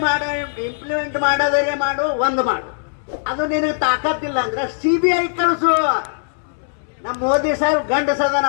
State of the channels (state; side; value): silent; right; digital silence